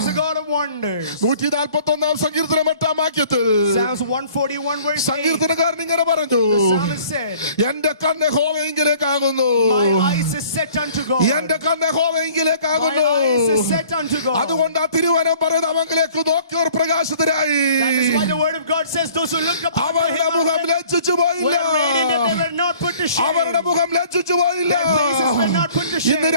a God of wonders. 141 സങ്കീർത്തനം 8 വാക്യത്തിൽ Psalms 141 verse 8. സങ്കീർത്തനക്കാരൻ ഇങ്ങനെ പറഞ്ഞു, The psalmist said, എന്റെ കണ്ണ് യഹോവയിങ്കിലേക്കാകുന്നു. my eyes is set unto God. എന്റെ കണ്ണ് My യഹോവയിങ്കിലേക്കാകുന്നു. eyes is set unto God. അതുകൊണ്ട് ആ തിരുവനം പറയുന്ന അവങ്കിലേക്ക് നോക്കിയവർ പ്രകാശിതരായി. That is why the word of God says, those who looked upon അവരുടെ him മുഖം ലജ്ജിച്ചു പോയില്ല. were radiant, and they were not put to shame. അവരുടെ മുഖം ലജ്ജിച്ചു പോയില്ല. Their faces were not put to shame. ഇന്ന്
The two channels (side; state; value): both; inverted; correlation -0.53